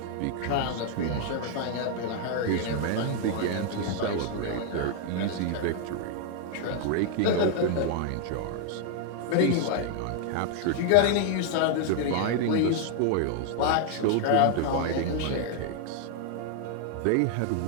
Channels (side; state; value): both; different; correlation 0.00